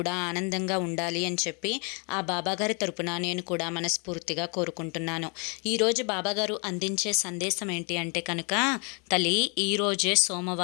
ఆనందంగా ఉండాలి అని చెప్పి ఆ బాబాగారి తరపున నేను కూడా మనస్ఫూర్తిగా కోరుకుంటున్నాను. ఈరోజు బాబాగారు అందించే సందేశం ఏంటి అంటే కనుక, తల్లి ఈరోజే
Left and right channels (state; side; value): quieter; right; 34.8 dB